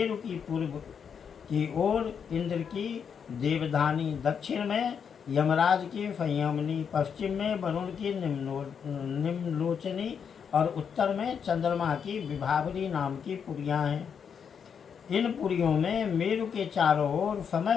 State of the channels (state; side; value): quieter; right; 7.1 dB